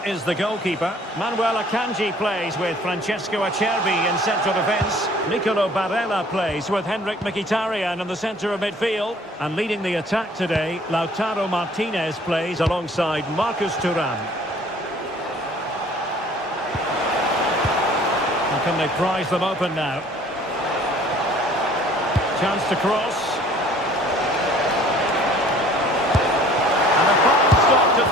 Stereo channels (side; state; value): both; normal; correlation 0.53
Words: is the goalkeeper. Manuel Akanji plays with Francesco Acerbi in central defence. Nicolo Barella plays with Henrik Mkhitaryan in the centre of midfield. And leading the attack today, Lautaro Martinez plays alongside Marcus Thuram. How can they prize them open now? Chance to cross.